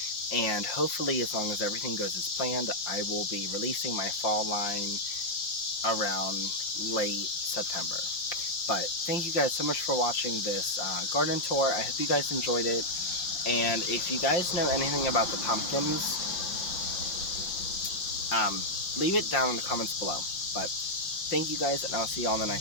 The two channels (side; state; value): right; late; 5.7 ms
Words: And hopefully, as long as everything goes as planned, I will be releasing my fall line around late September. But thank you guys so much for watching this garden tour. I hope you guys enjoyed it. And if you guys know anything about the pumpkins, leave it down in the comments below. But thank you guys, and I'll see you all in the